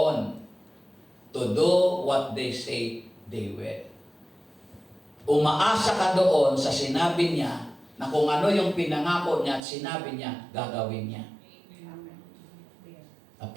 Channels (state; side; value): drops out; left; at 9.6 s